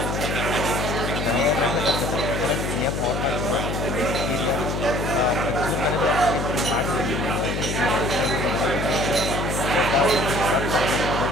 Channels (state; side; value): noise; left; hum, 2 dB below the sound